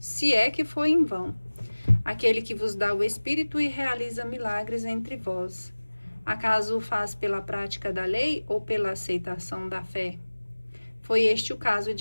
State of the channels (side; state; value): both; inverted; correlation -1.00